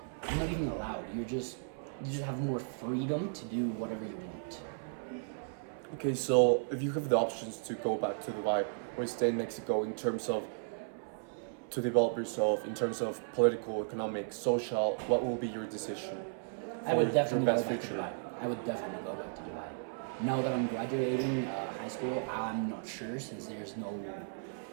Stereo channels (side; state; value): left; silent; 54 dB below the other